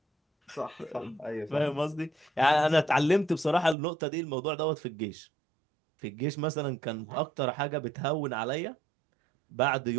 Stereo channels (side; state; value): left; drops out; at 3.8 s